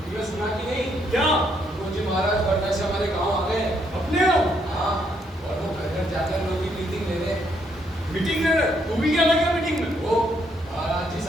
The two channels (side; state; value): both; normal; correlation 0.73